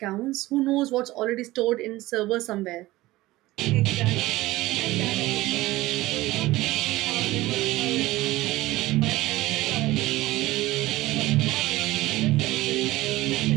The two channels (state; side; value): quieter; left; 18.2 dB